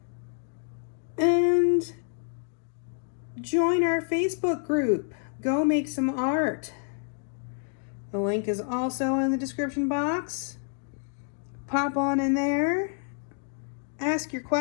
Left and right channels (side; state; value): right; silent; 59 dB below the other